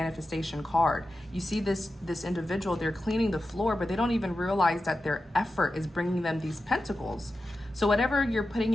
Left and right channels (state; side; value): normal; both; correlation 0.92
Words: card. You see this individual, they're cleaning the floor, but they don't even realize that their effort is bringing them these pentacles. So whatever you're putting